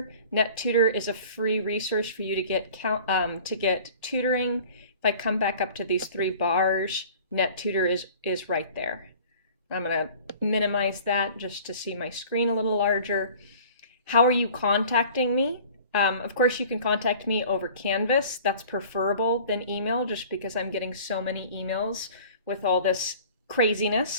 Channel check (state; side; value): inverted; both; correlation -0.46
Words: NetTutor is a free resource for you to get tutoring. If I come back up to these 3 bars, NetTutor is right there. I'm going to minimize that just to see my screen a little larger. How are you contacting me? Of course, you can contact me over Canvas. That's preferable than email, just because I'm getting so many emails with all this